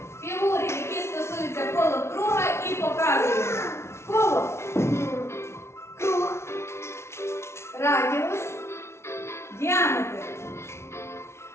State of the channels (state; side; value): late; right; 0.13 ms